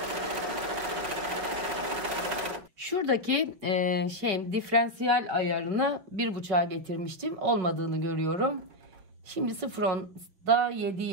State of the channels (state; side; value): late; left; 5.1 ms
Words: Şuradaki diferansiyel ayarını 1.5'a getirmiştim. Olmadığını görüyorum. Şimdi 0.10'da